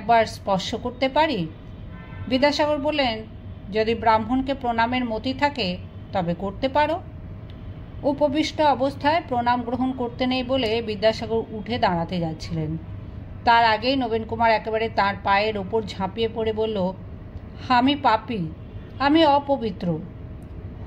স্পর্শ করতে পারি? বিদ্যাসাগর বললেন, যদি ব্রাহ্মণকে প্রণামের মতি থাকে তবে করতে পারো। উপবিষ্ট অবস্থায় প্রণাম গ্রহণ করতে নেই বলে বিদ্যাসাগর উঠে দাঁড়াতে যাচ্ছিলেন। তার আগেই নবীন কুমার একেবারে তার পায়ের ওপর ঝাঁপিয়ে পড়ে বলল, আমি পাপী, আমি অপবিত্র।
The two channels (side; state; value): both; identical; correlation 1.00